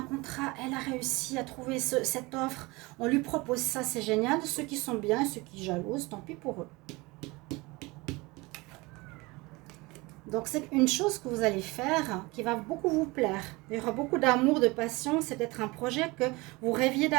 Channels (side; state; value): left; quieter; 23.7 dB